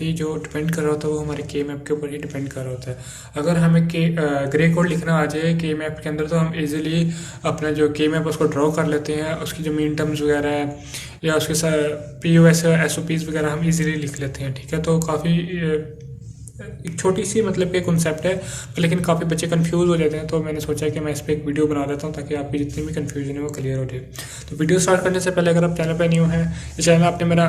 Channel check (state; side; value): identical; both; correlation 1.00